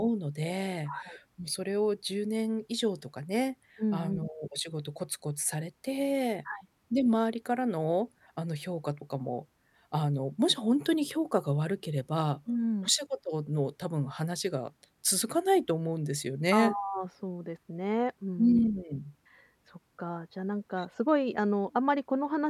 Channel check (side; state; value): both; identical; correlation 1.00